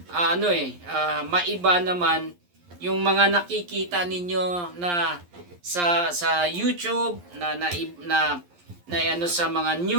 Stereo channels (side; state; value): left; late; 11 ms